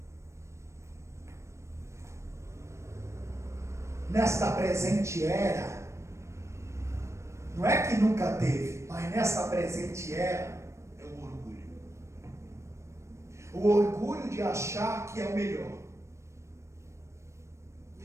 nesta presente era, não é que nunca teve, mas nesta presente era, é o orgulho. O orgulho de achar que é o melhor,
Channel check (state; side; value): late; left; 0.14 ms